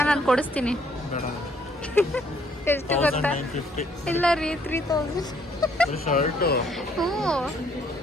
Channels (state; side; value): normal; both; correlation 0.66